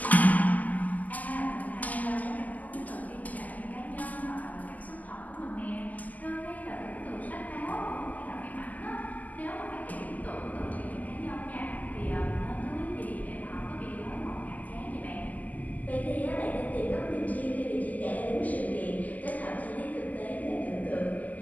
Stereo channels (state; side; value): late; right; 0.079 ms